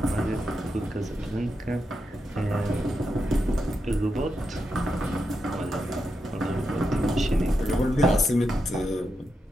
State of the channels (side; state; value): both; normal; correlation 0.86